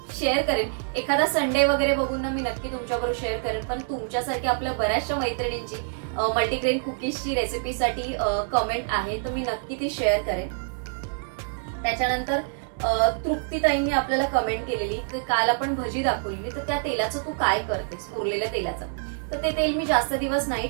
शेअर करेन. एखादा संडे वगैरे बघून ना मी नक्की तुमच्याबरोबर शेअर करेन. पण तुमच्यासारखी आपल्या बऱ्याचशा मैत्रिणींची मल्टीग्रेन कुकीजची रेसिपीसाठी कमेंट आहे तर मी नक्की ती शेअर करेन. त्याच्यानंतर तृप्तीताईंनी आपल्याला कमेंट केलेली की काल आपण भजी दाखवलेली, तर त्या तेलाचं तू काय करतेस, उरलेल्या तेलाचं. तर ते तेल मी जास्त दिवस नाही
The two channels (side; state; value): left; silent; 61 dB below the other